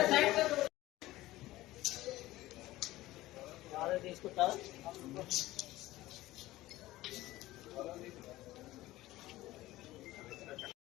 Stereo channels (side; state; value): right; quieter; 17.0 dB